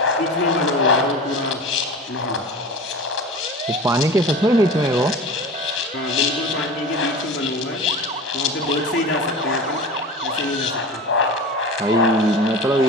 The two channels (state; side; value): normal; both; correlation 0.34